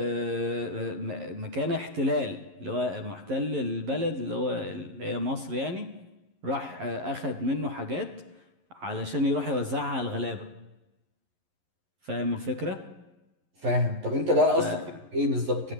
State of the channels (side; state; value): left; late; 11 ms